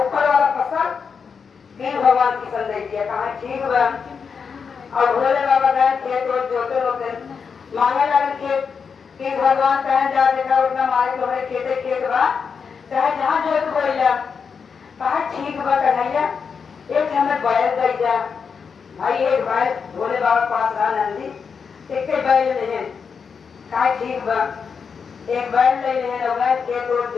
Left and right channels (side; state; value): right; quieter; 6.0 dB